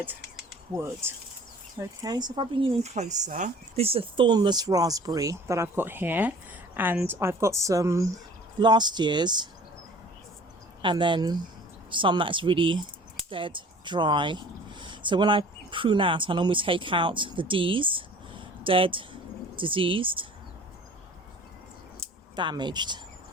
wood. Okay, so if I bring you in closer, this is a thornless raspberry that I've got here, and I've got some last year's and then some that's really dead dry. So when I prune out, I normally take out the D's, dead, diseased, damaged.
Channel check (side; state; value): both; normal; correlation 0.48